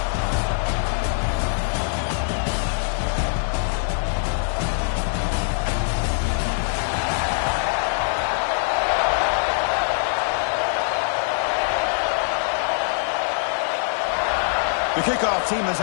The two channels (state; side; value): silent; right; 62 dB below the other